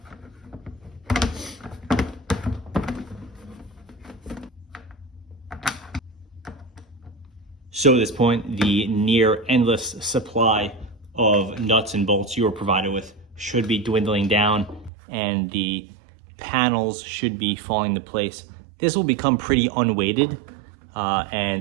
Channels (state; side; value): drops out; left; at 14.9 s